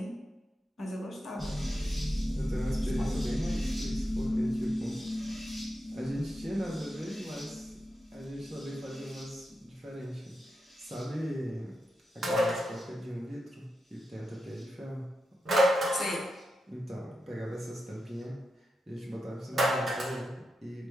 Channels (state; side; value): normal; both; correlation 0.88